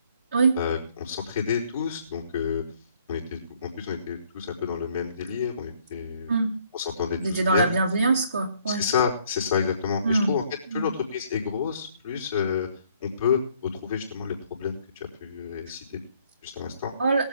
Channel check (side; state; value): both; inverted; correlation -0.64